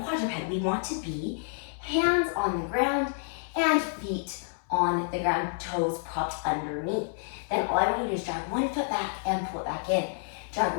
quadruped, we want to be hands on the ground and feet on the ground, toes propped underneath. Then all I want you to do is drag 1 foot back and pull it back in. Drag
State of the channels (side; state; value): right; silent; 59 dB below the other